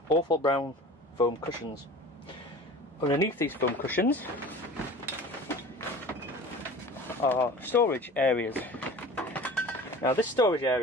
awful brown foam cushions. Underneath these foam cushions are storage areas. Now this storage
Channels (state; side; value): normal; both; correlation 0.40